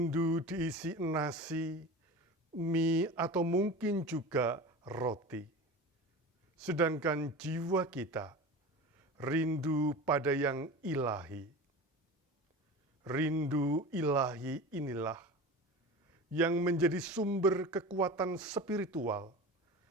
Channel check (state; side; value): normal; both; correlation 0.32